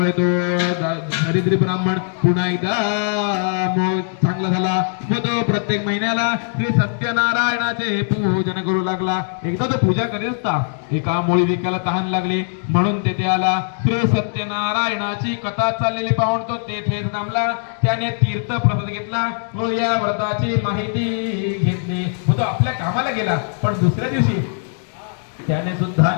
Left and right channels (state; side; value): silent; right; digital silence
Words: तो दरिद्री ब्राह्मण पुन्हा एकदा चांगला झाला व तो प्रत्येक महिन्याला श्री सत्यनारायणाचे पूजन करू लागला. एकदा तो पूजा करीत असता एका मोळी विकायला तहान लागली म्हणून तेथे आला. श्री सत्यनारायणाची कथा चाललेली पाहून तो तेथेच थांबला. त्याने तीर्थ प्रसाद घेतला व या व्रताची माहिती घेतली व तो आपल्या कामाला गेला. पण दुसऱ्या दिवशी त्याने सुद्धा